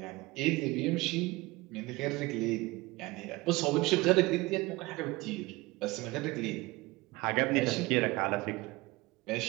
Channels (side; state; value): left; quieter; 21.8 dB